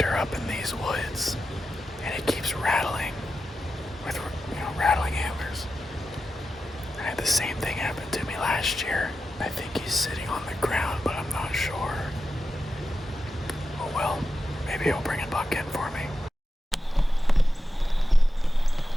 up in these woods, and it keeps rattling with, rattling antlers. I had the same thing happen to me last year. I think he's sitting on the ground, but I'm not sure. Oh well, maybe he'll bring a buck in for me.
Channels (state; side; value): normal; both; correlation 0.90